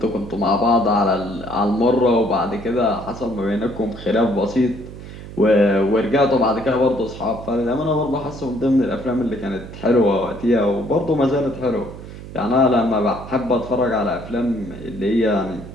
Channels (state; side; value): noise; right; hum, 13 dB below the sound